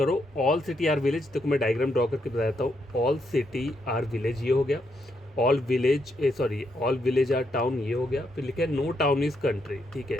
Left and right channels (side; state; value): both; normal; correlation 0.78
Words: ऑल सिटी आर विलेज। देखो मैं डायग्राम ड्रॉ करके बता देता हूँ। ऑल सिटी आर विलेज ये हो गया, all village all village are town ये हो गया, फिर लिखा है नो टाउन इज कंट्री, ठीक है,